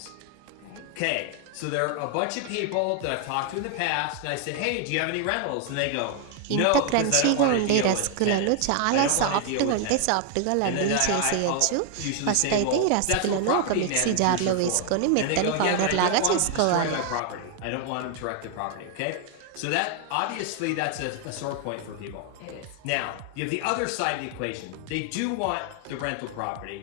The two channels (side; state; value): both; different; correlation 0.00